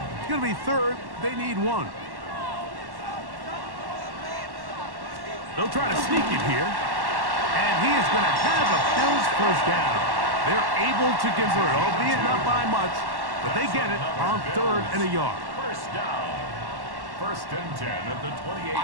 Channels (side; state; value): left; late; 1.1 ms